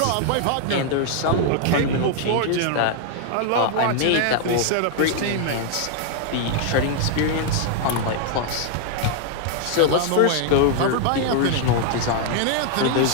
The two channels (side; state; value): both; different; correlation 0.00